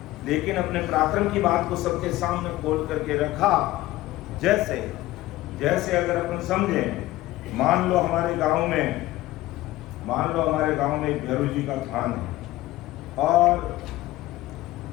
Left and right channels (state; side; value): quieter; right; 16.7 dB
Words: लेकिन अपने पराक्रम की बात को सबके सामने खोल करके रखा। जैसे जैसे अगर अपन समझे, मान लो हमारे गांव में एक भैरव जी का थान है, और